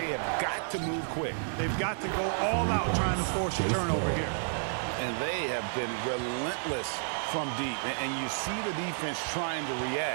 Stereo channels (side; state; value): left; silent; digital silence